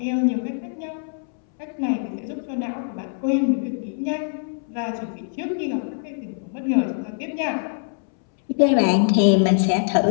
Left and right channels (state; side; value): silent; right; 63 dB below the other